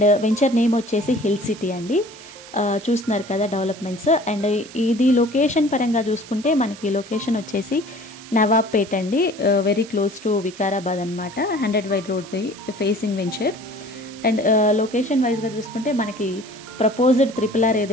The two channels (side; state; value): right; noise; hiss, 18 dB below the sound